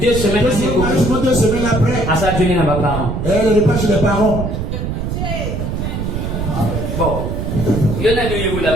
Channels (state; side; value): noise; right; rumble, 3 dB below the sound